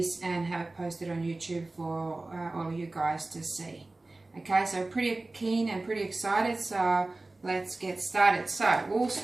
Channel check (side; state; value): left; quieter; 3.0 dB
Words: and have it posted on YouTube for all of you guys to see. Okay, so pretty keen and pretty excited, so let's get started. So we'll